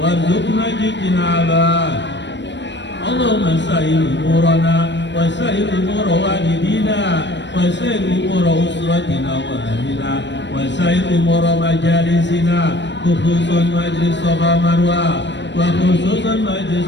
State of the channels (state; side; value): late; right; 0.52 ms